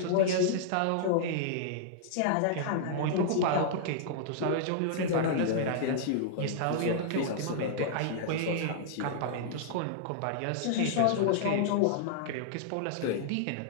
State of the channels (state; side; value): different; both; correlation -0.01